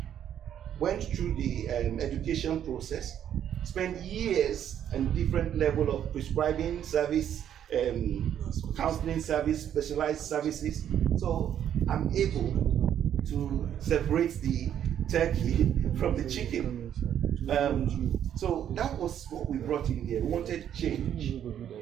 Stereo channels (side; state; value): left; quieter; 9.9 dB